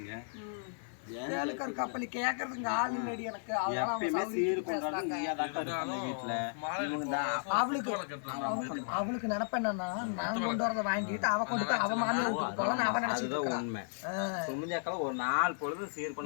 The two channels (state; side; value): silent; right; digital silence